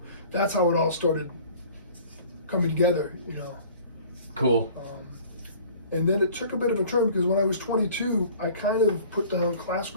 that's how it all started coming together. Cool. And then it took a bit of a turn because when I was 22, I kind of put down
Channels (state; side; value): inverted; both; correlation -0.48